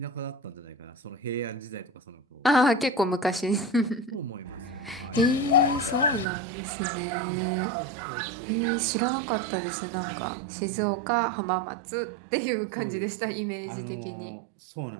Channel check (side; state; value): left; drops out; at 6.2 s